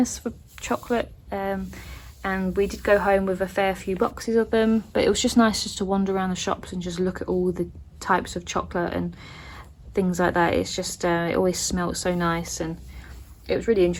for chocolate. And we did go home with a fair few boxes of them, but it was just nice just to wander around the shops and just look at all the types of chocolate and things like that. It's just, it always smelled so nice, and it was really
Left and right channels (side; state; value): both; identical; correlation 1.00